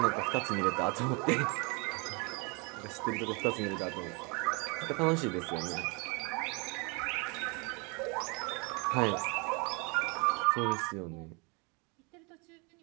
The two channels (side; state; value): left; quieter; 30.7 dB